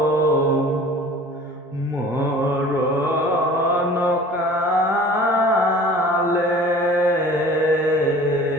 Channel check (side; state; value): both; normal; correlation 0.45